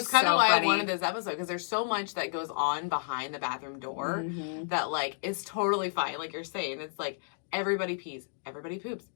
kind of why I wanted this episode, because there's so much that goes on behind the bathroom door that like is totally fine. Like you're saying, it's like everybody pees, everybody poops.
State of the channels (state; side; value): silent; right; digital silence